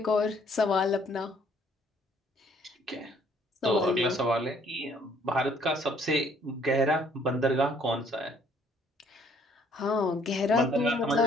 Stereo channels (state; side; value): normal; both; correlation 0.62